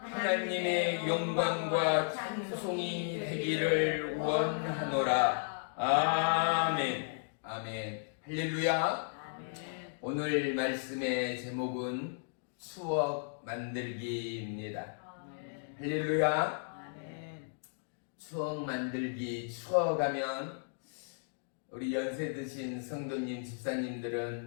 영광과 찬송이 되기를 원하노라. 아멘. 아멘. 할렐루야. 오늘 말씀의 제목은 추억 만들기입니다. 할렐루야. 추억 만들기, 추억하면 우리 연세 드신 성도님,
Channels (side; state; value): right; silent; digital silence